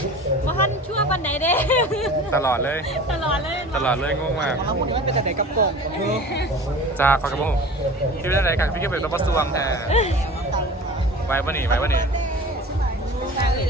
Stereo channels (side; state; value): both; normal; correlation 0.39